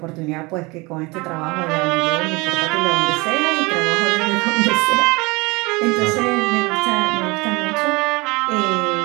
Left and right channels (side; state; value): left; quieter; 24.9 dB